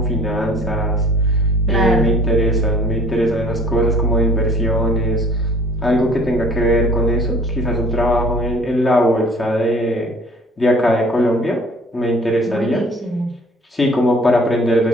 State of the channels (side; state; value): both; normal; correlation 0.51